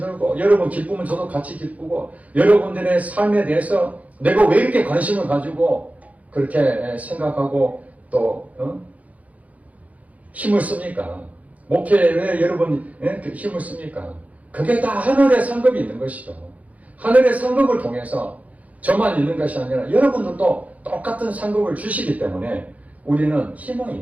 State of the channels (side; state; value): left; late; 0.070 ms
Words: 여러분 기쁘면 저도 같이 기쁘고 여러분들의 삶에 대해서 내가 왜 이렇게 관심을 가지고 그렇게 생각하고 또 힘을 씁니까? 목회에 왜 여러분이 힘을 씁니까? 그게 다 하늘의 상급이 있는 것이죠. 하늘의 상급을 통해서 저만 있는 것이 아니라 여러분들도 똑같은 상급을 주시기 때문에 우리는 희망이